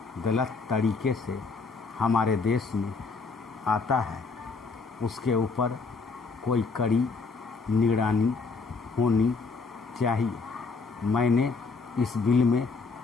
गलत तरीके से हमारे देश में आता है उसके ऊपर कोई कड़ी निगरानी होनी चाहिए। मैंने इस बिल में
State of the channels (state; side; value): quieter; right; 4.4 dB